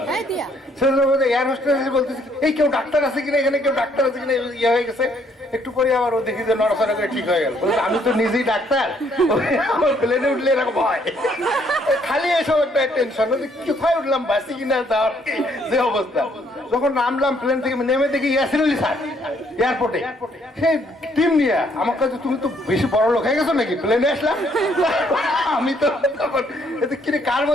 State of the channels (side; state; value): both; normal; correlation 0.67